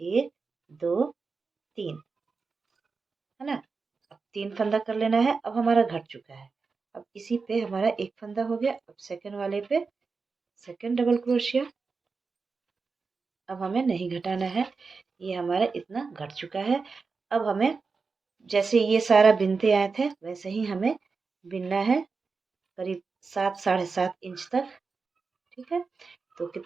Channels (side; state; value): left; quieter; 4.6 dB